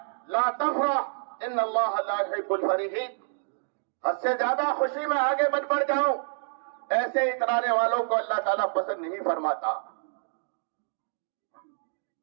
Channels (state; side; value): silent; left; digital silence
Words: لا تفرح ان اللہ لا يحب الفرحین، حد سے زیادہ خوشی میں آگے بڑھ جاؤں، ایسے اترانے والوں کو اللہ تعالیٰ پسند نہیں فرماتا۔